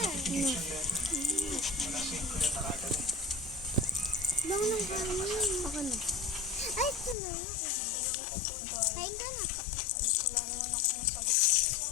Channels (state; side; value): drops out; right; at 7.2 s